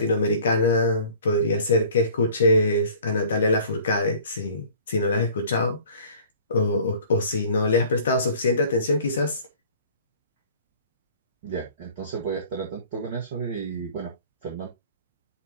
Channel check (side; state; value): both; inverted; correlation -0.49